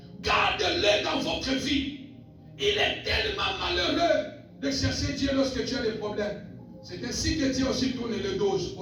Garde-le dans votre vie. Il est tellement malheureux de chercher Dieu lorsque tu as des problèmes. C'est ainsi que Dieu aussi tourne le dos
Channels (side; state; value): both; identical; correlation 1.00